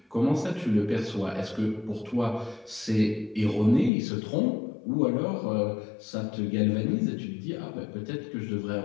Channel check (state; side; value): drops out; right; at 3.9 s